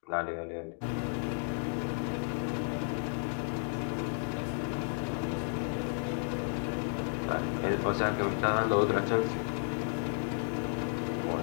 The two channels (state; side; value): silent; right; 56 dB below the other